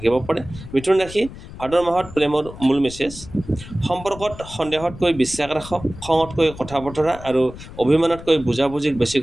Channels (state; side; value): noise; left; rumble, 15 dB below the sound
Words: পাৰে। মিথুন ৰাশি ভাদ মাহত প্ৰেমৰ মূল মেছেজ: সম্পৰ্কত সন্দেহতকৈ বিশ্বাস ৰাখক, খঙতকৈ কথা বতৰা আৰু অভিমানতকৈ বুজাবুজিক বেছি